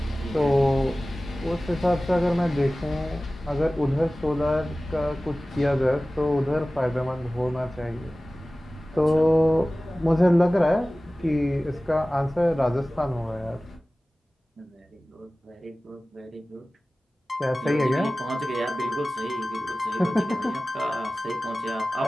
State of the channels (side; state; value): both; normal; correlation 0.97